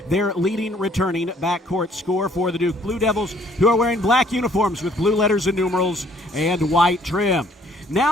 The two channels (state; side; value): normal; both; correlation 0.61